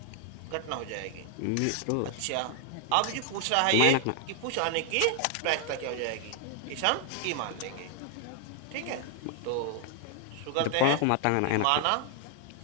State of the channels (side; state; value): both; different; correlation 0.00